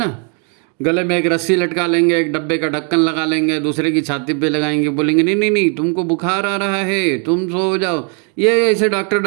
गले में एक रस्सी लटका लेंगे, एक डब्बे का ढक्कन लगा लेंगे, दूसरे की छाती पे लगाएंगे, बोलेंगे नहीं नहीं नहीं तुमको बुखार आ रहा है, तुम सो जाओ। ये ऐसे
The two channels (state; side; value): quieter; left; 38.9 dB